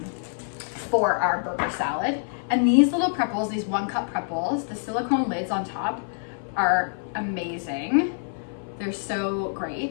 for our burger salad. And these little prep bowls, these 1 cup prep bowls, the silicone lids on top are amazing. They're so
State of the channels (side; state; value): right; silent; 56 dB below the other